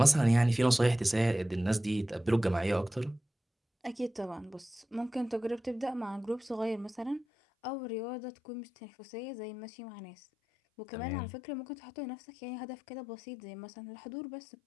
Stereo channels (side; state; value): right; drops out; at 7.2 s